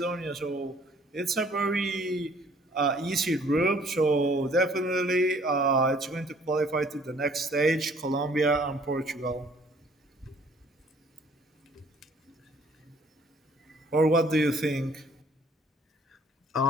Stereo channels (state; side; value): normal; both; correlation 0.58